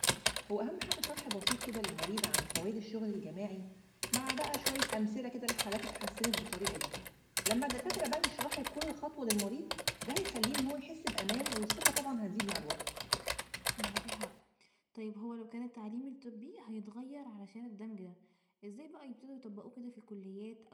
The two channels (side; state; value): both; identical; correlation 1.00